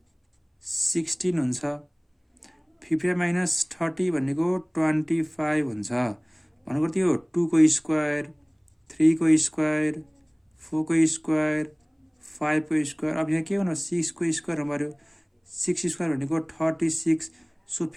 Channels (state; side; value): identical; both; correlation 1.00